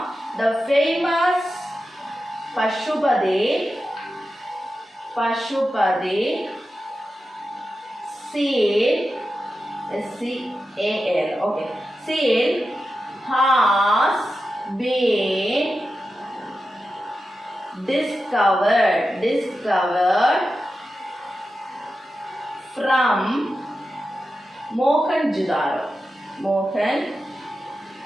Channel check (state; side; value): normal; both; correlation 0.91